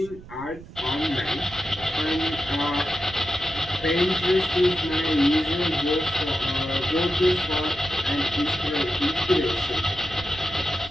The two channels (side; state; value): right; noise; rumble, 17 dB below the sound